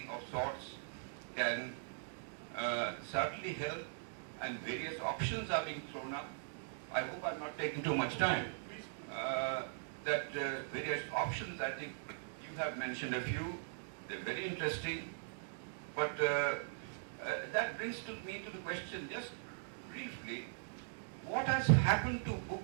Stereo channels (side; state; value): left; silent; digital silence